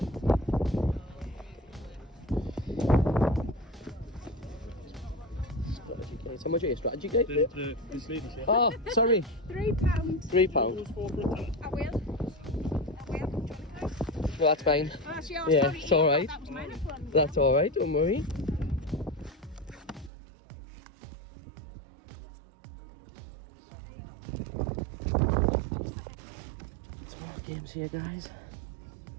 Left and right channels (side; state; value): left; drops out; at 20.1 s